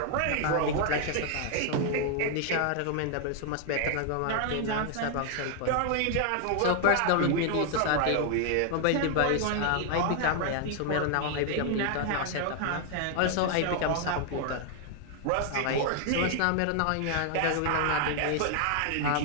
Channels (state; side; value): different; both; correlation 0.00